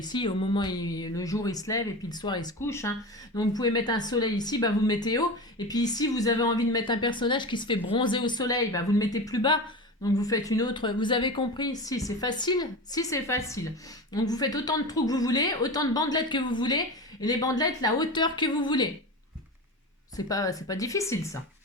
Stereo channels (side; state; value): both; normal; correlation 0.26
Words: au moment où le jour il se lève et puis le soir il se couche. Hein. Donc, vous pouvez mettre un soleil ici, bah, vous le mettez haut. Et puis ici, vous avez envie de mettre un personnage qui se fait bronzer au soleil, bah, vous le mettez plus bas. Donc vous faites une autre, vous avez compris? Si c'est facile, si c'est facile. Donc vous faites autant de trous que vous voulez, autant de bandelettes que vous voulez, et les bandelettes la hauteur que vous voulez. C'est pas difficile ça.